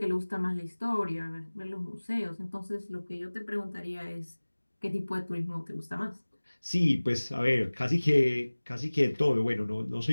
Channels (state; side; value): inverted; both; correlation -1.00